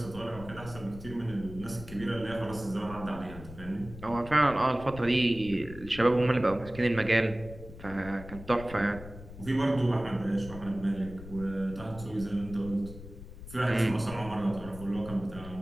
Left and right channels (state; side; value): noise; left; rumble, 14 dB below the sound